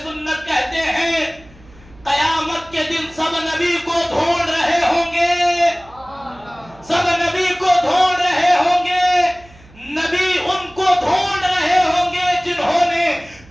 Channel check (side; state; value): right; noise; hum, 25 dB below the sound